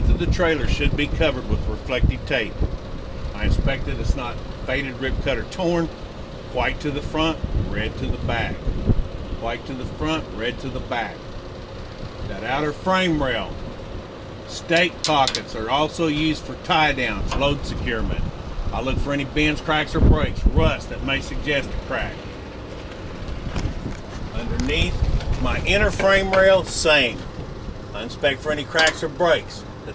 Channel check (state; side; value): identical; both; correlation 1.00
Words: of the trailer should be covered with reflective tape. I inspect it, it's not faded, ripped, cut, or torn. White to the front, red to the back. White to the front, red to the back. That outer frame rail, stake pockets are also used for tie downs, load securement. I look for any bends, cracks, or breaks, rust that may suggest a crack. Underneath my inner frame rail, same. I inspect for any cracks or breaks,